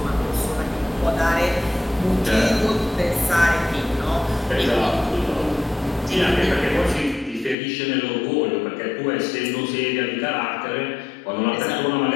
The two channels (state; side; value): drops out; right; at 7.6 s